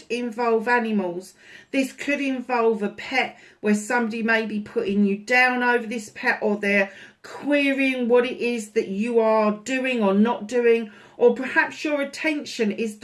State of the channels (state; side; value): identical; both; correlation 1.00